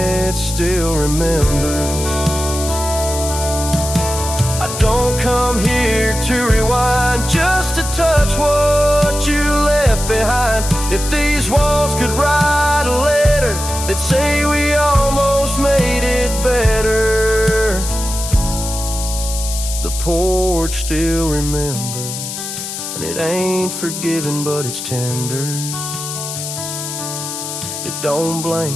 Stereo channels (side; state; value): left; noise; hiss, 7 dB below the sound